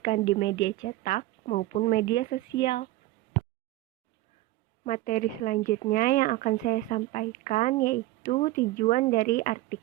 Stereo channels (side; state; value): left; quieter; 17.0 dB